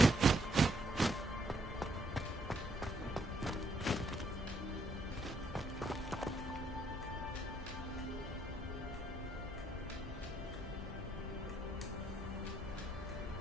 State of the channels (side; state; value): both; normal; correlation 0.72